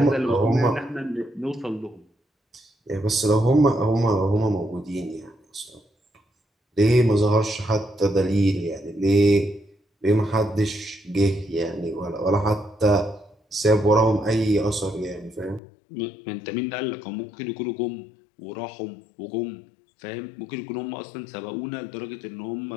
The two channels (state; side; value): drops out; right; at 15.6 s